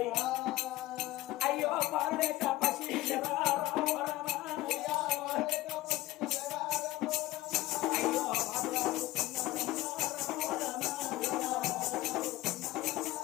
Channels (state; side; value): quieter; right; 17.3 dB